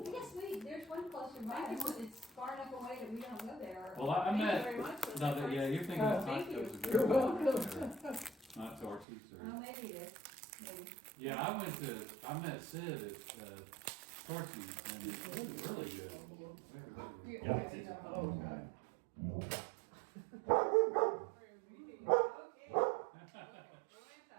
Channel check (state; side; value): drops out; left; at 9.1 s